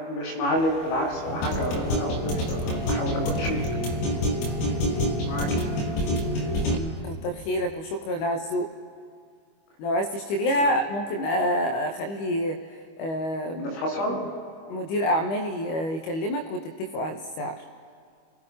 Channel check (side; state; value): right; late; 25 ms